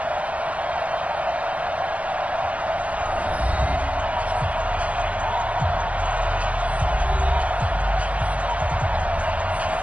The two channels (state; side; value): late; left; 0.065 ms